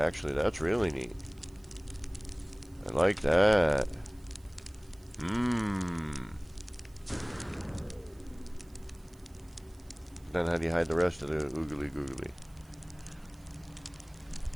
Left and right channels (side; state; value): right; noise; hiss, 29 dB below the sound